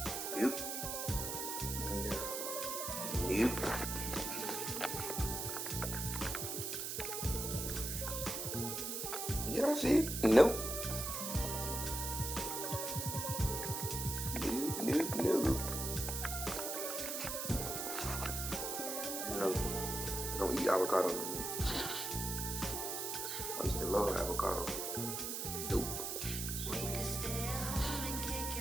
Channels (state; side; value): noise; right; hiss, 3 dB below the sound